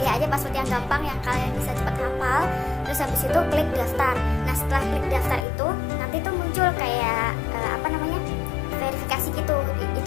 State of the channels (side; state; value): right; drops out; at 5.5 s